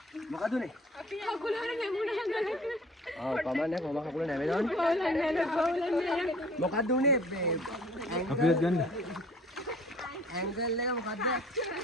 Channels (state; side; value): normal; both; correlation 0.50